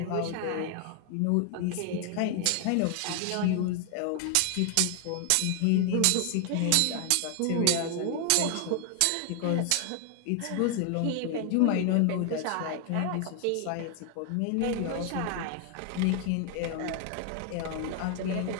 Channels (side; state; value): both; different; correlation 0.00